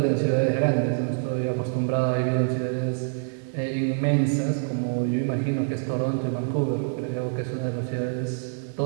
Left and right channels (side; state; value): left; silent; digital silence